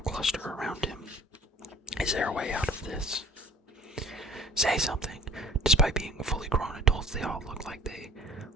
around him. "Is there a way out of this?" "Say something." Despite being fully grown adults, they all looked like they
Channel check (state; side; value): normal; both; correlation 0.47